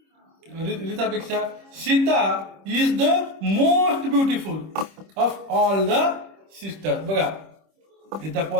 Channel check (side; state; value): left; late; 26 ms